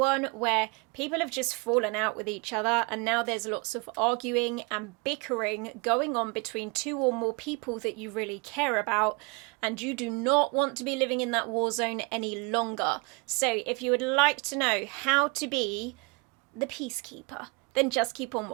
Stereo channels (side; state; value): left; quieter; 29.8 dB